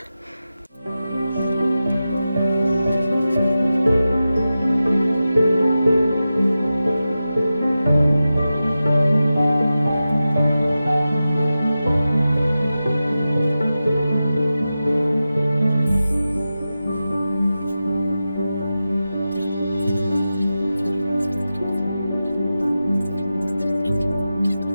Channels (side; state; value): both; inverted; correlation -0.93